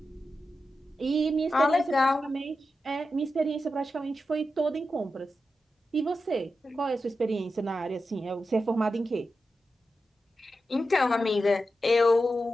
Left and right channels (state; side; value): normal; both; correlation 0.90